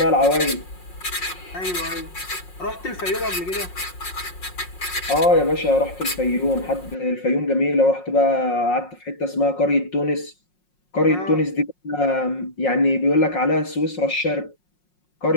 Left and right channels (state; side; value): late; right; 5.5 ms